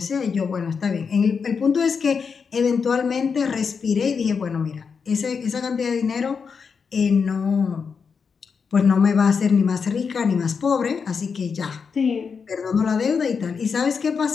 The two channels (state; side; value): quieter; right; 5.8 dB